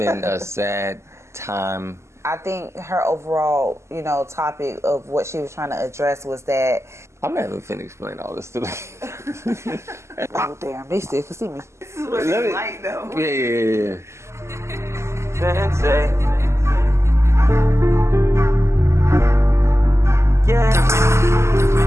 a sad time. I think her overall, topic of what she was trying to address was that. I'm not even finna explain all this to them. Oh, damn, they still can see me. This is what it's like, though. Yeah. Sensei. Yeah.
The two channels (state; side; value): late; left; 0.13 ms